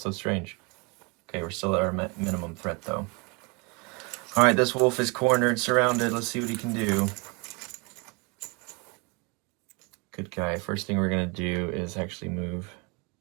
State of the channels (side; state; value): left; quieter; 29.7 dB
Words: so strange. Okay, we're still at our minimum threat, though. All right, this wolf is cornered, surrounded. Let's see what he can do. Good guy. First thing we're going to do is actually move